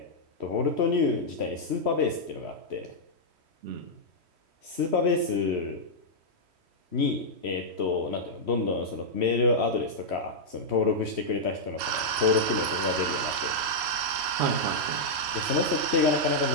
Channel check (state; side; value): late; left; 3.1 ms